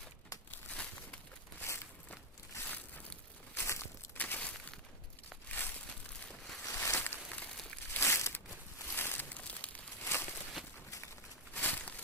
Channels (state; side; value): normal; both; correlation 0.01